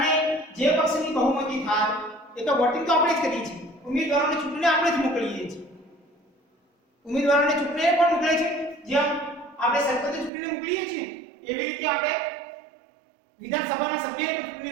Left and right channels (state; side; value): drops out; left; at 10.3 s